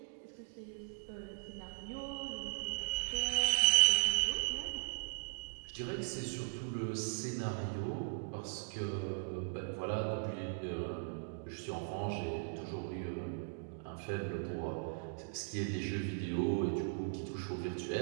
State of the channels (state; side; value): silent; left; digital silence